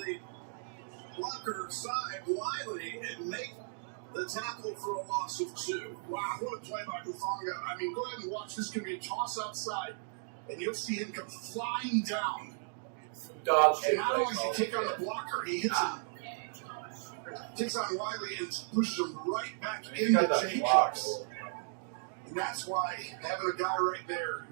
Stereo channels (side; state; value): left; silent; digital silence